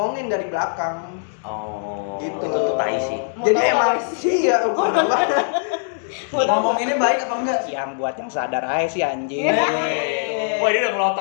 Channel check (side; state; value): right; silent; digital silence